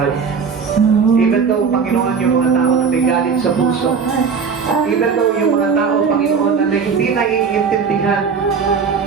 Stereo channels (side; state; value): left; quieter; 5.8 dB